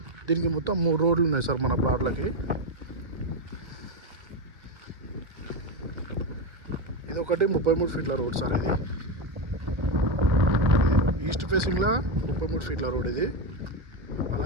దీనికి మొత్తం 3 రోడ్లు ఉన్నాయి సార్ మన ప్లాట్లకి. ఇది ఒకటి 33 ఫీట్ల రోడ్ సార్. ఇది ఈస్ట్ ఫేసింగ్లో 33 ఫీట్ల రోడ్ ఇది.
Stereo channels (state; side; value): late; left; 1.4 ms